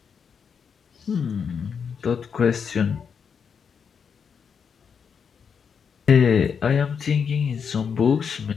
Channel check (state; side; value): quieter; right; 6.6 dB